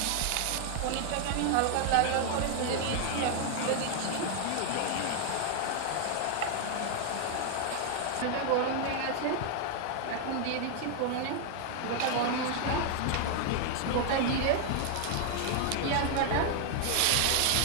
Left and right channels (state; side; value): different; both; correlation 0.00